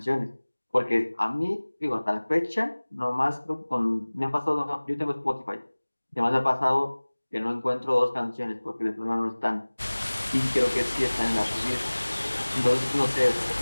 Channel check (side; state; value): both; inverted; correlation -1.00